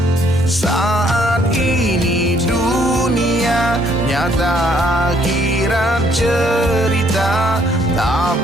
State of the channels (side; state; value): both; normal; correlation 0.66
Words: Saat ini dunia nyata, akhirat cerita,